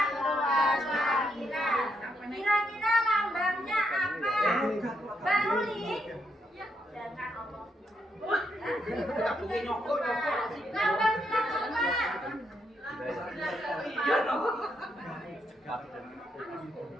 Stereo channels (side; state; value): both; normal; correlation 0.78